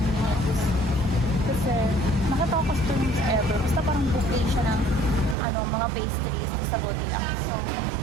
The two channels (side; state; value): left; drops out; at 5.4 s